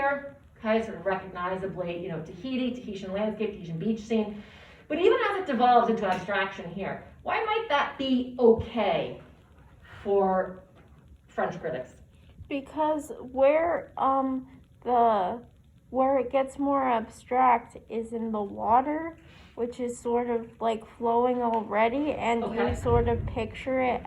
okay, sort of recognizably, Tahitian landscape, Tahitian beach scene. But even as it devolves into abstraction here, why might that be okay for French critics? Because where it gets more abstract is in the water, which is sort of like flowing already, and Okay. you sort of picture it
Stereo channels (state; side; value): identical; both; correlation 1.00